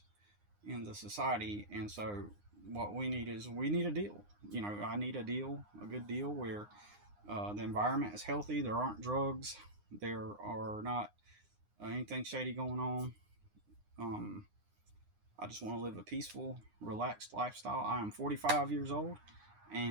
in the society. And so what we need a deal. I need a deal, a good deal where the environment is healthy. There aren't drugs. There are not anything shady going on. I just want to live a peaceful, relaxed lifestyle. I am 45 years old,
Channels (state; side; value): late; left; 9.7 ms